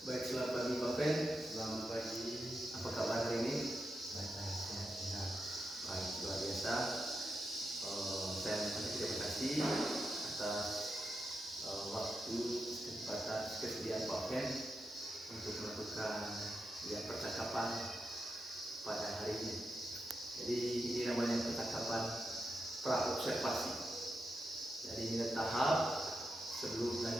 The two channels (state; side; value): normal; both; correlation 0.87